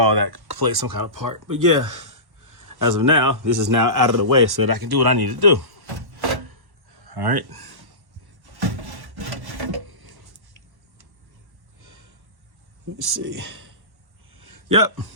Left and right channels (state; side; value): late; left; 1.1 ms